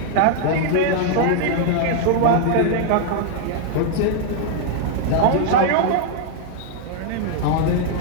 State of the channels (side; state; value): both; different; correlation 0.00